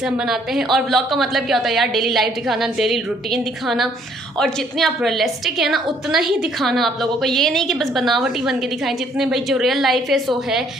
हम बनाते हैं। और व्लॉग का मतलब क्या होता है यार, डेली लाइफ दिखाना, डेली रूटीन दिखाना, और जितने आप रियलिस्टिक है ना उतना ही दिखाना आप लोगों को। ये नहीं कि बस बनावटी बन के दिखाएं, जितने भाई जो रियल लाइफ है सो है।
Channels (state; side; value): normal; both; correlation 0.64